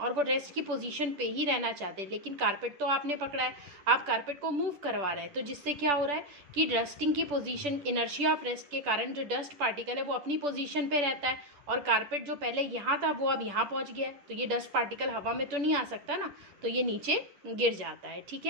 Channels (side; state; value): left; late; 10 ms